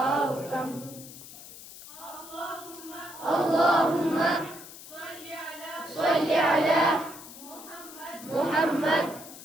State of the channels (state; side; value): noise; left; hiss, 15 dB below the sound